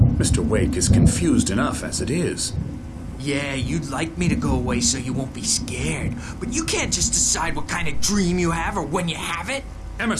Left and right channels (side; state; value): both; identical; correlation 1.00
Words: Mr. Wake is confused enough as it is. Yeah, you'd like me to go away so you won't be scared. But you can't just decide what kind of dream you have or when you have it.